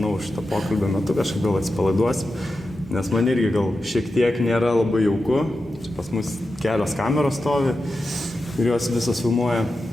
šitą pokalbio metu kažkaip gal atsipalaiduosim, nes man irgi gal šiek tiek nėra labai jauku. Čia pas mus kelios kameros stovi ir jos visos filmuoja.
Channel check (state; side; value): normal; both; correlation 0.91